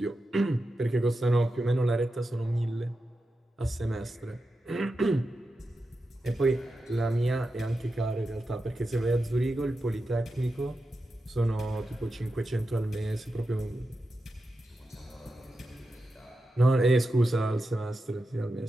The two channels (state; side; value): normal; both; correlation 0.90